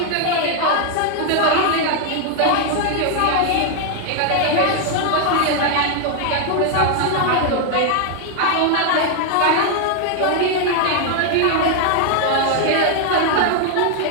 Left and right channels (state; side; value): different; both; correlation 0.00